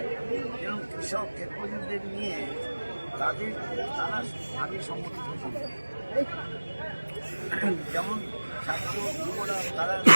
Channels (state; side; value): inverted; both; correlation -1.00